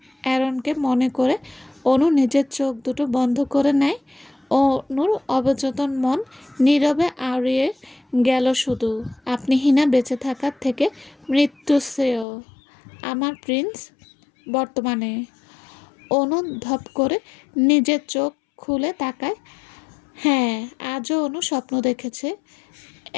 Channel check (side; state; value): right; drops out; at 12.2 s